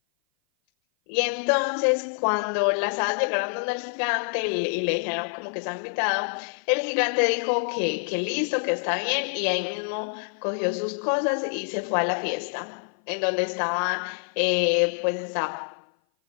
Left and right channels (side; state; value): right; silent; 56 dB below the other